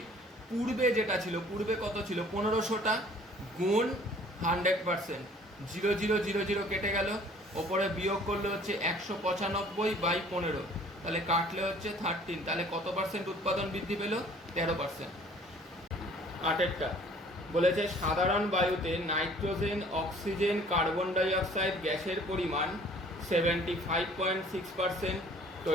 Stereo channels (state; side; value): normal; both; correlation 0.54